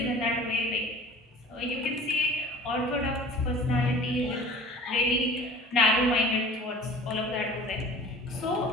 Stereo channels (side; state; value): both; normal; correlation 0.44